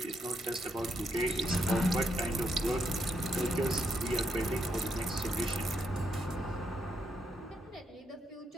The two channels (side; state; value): both; normal; correlation 0.79